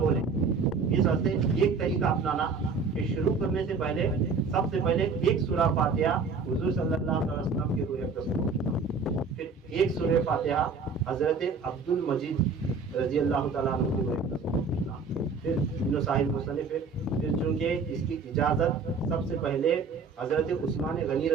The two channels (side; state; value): left; quieter; 4.7 dB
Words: اس واسطے ایک طریقہ اپنانا کہ شروع کرنے سے پہلے سب سے پہلے ایک سورہ فاتحہ حضور صلی اللہ علیہ وسلم کے روح اقدس کو، پھر ایک سورہ فاتحہ حضرت عبد المجید رضی اللہ تعالیٰ عنہ کے روح اقدس کو، پھر ابن صاحب مصنف ہے. پھر چونکہ اس کی اجازت سب سے پہلے حضرت عثمان غنی